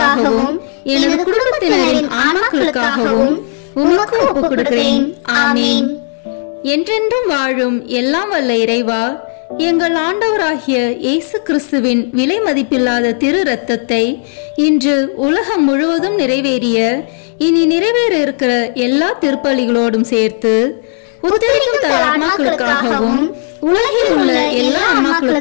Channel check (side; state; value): right; silent; digital silence